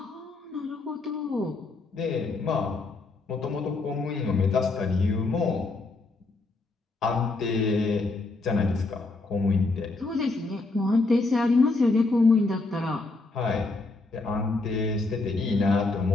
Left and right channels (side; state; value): right; quieter; 3.5 dB